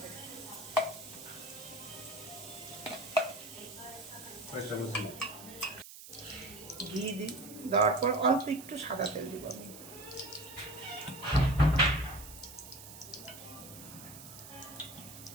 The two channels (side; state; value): right; noise; hiss, 14 dB below the sound